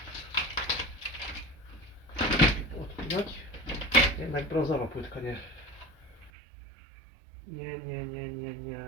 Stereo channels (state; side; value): drops out; left; at 6.3 s